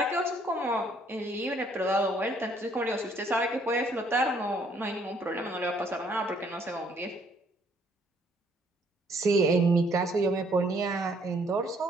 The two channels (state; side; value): normal; both; correlation 0.65